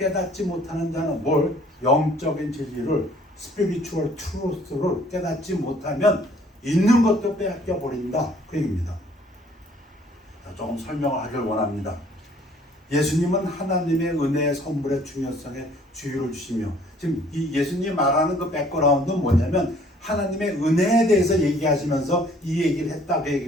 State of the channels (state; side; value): normal; both; correlation 0.58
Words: 못하는 자는 뭘? 영적인 진리를 spiritual truth를 깨닫지 못하면 있는 것도 빼앗겨 버린다. 그 얘기입니다. 조금 설명을 하길 원합니다. 예수님은 하나님의 은혜의 선물의 중요성에 주의를 주시며 지금 이 예수님이 말하는 그 백그라운드는 뭐냐면 하나님의 은혜에 대해서 얘기하시면서 이 얘기를 했다 그